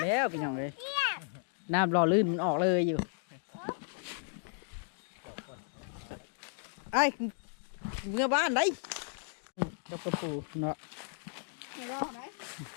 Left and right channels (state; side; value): silent; right; digital silence